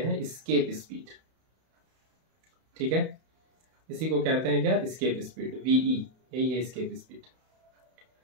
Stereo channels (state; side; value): late; left; 31 ms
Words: एस्केप स्पीड। ठीक है, इसी को कहते हैं क्या, एस्केप स्पीड, वीई, यही है एस्केप स्पीड।